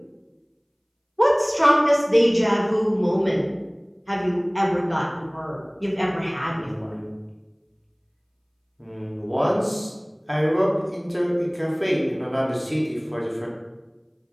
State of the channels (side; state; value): both; identical; correlation 1.00